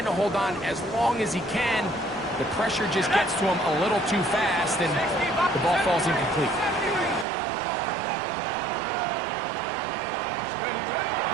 to hold on as long as he can. The pressure just gets to him a little too fast and the ball falls incomplete.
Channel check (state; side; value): drops out; left; at 7.2 s